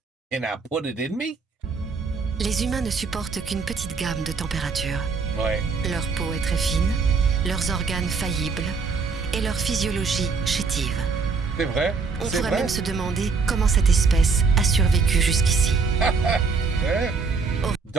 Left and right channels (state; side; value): quieter; left; 4.8 dB